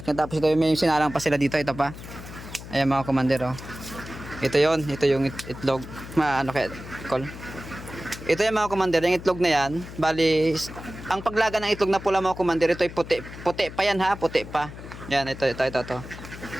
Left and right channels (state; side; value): noise; left; hum, 13 dB below the sound